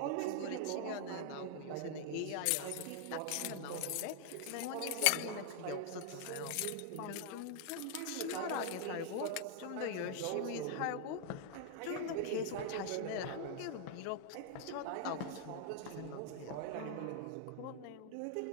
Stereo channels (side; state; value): both; different; correlation 0.00